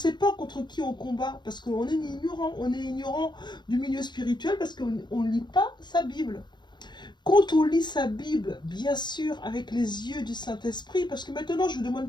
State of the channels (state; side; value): late; right; 0.22 ms